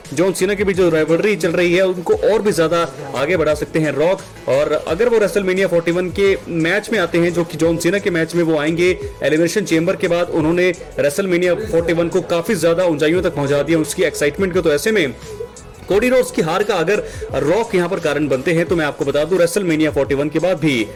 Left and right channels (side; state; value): both; identical; correlation 1.00